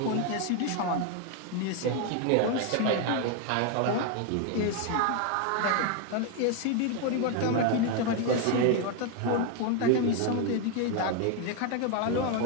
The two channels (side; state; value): both; different; correlation 0.01